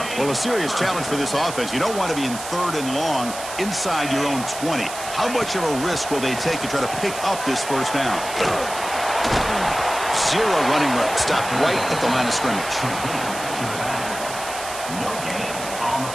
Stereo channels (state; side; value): noise; right; hiss, 10 dB below the sound